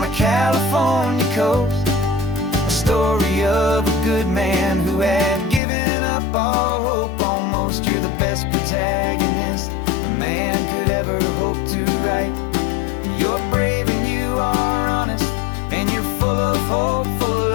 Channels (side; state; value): right; drops out; at 5.6 s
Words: a California coast, a story of a good man who had given up all hope almost. You're the best protagonist a man could ever hope to write. You're brave and you are honest, and you're full of hopeful